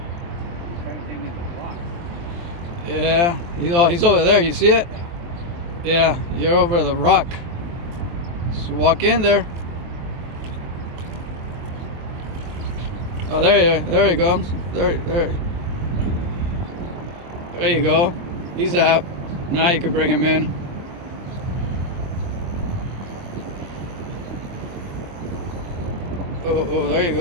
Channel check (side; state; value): left; late; 23 ms